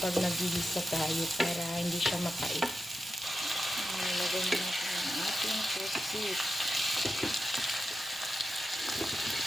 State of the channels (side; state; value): both; normal; correlation 0.90